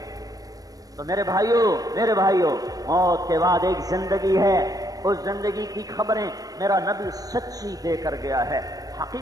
تو میرے بھائیوں موت کے بعد ایک زندگی ہے، اس زندگی کی خبریں میرا نبی سچی دے کر گیا ہے،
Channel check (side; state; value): left; late; 0.18 ms